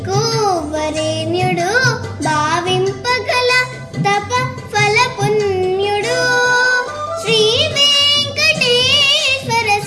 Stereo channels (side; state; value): both; identical; correlation 1.00